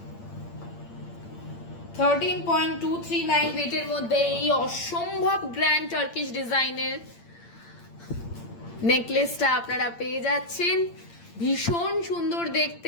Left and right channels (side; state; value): right; late; 8.7 ms